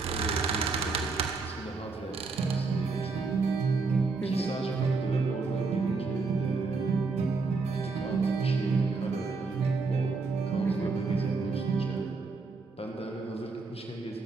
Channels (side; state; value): left; quieter; 4.2 dB